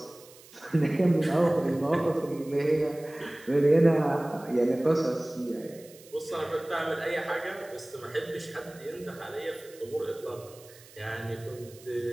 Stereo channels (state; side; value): noise; right; hiss, 22 dB below the sound